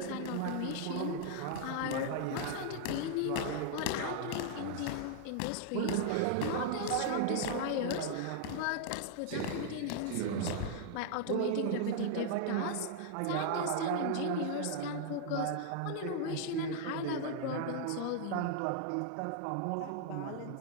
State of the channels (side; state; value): both; different; correlation -0.01